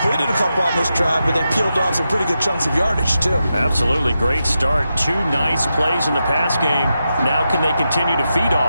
a couple on this drive, but they peeled off some pretty good chunks of yardage, too. Absolutely great start. 2 nice plays in the pass game. Now can they continue to feed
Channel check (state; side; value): inverted; both; correlation -0.88